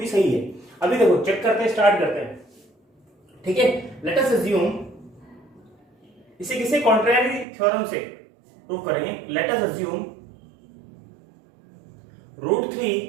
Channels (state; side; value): drops out; left; at 7.5 s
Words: सही है। अभी देखो चेक करते हैं, स्टार्ट करते हैं, ठीक है। लेट अस अज्यूम, इसे किसी कॉन्ट्रेरी थ्योरम से प्रूव करेंगे। Let us assume root 3